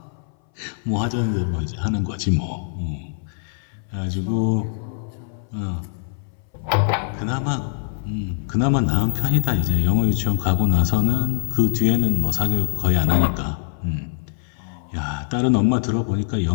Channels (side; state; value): right; silent; 60 dB below the other